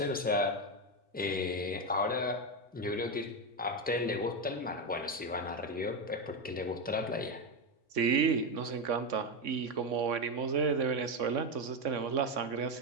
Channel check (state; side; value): normal; both; correlation 0.10